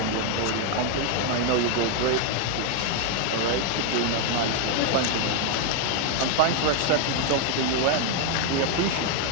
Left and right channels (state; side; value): different; both; correlation 0.01